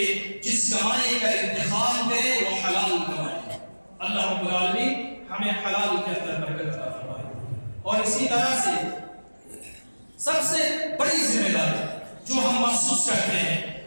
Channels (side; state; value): both; inverted; correlation -1.00